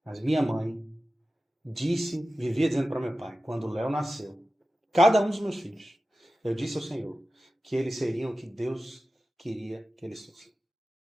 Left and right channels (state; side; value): normal; both; correlation 0.94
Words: Mas minha mãe vivia dizendo para meu pai, quando o Léo nasceu, cada um dos meus filhos, eu disse ao Senhor que eles seriam o que Deus queria que eles fossem.